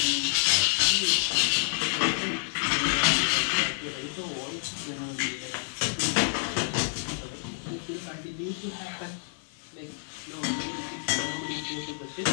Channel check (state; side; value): silent; right; digital silence